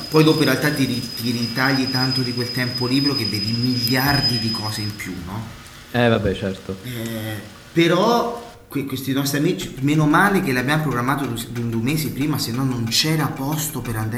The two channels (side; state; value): both; identical; correlation 1.00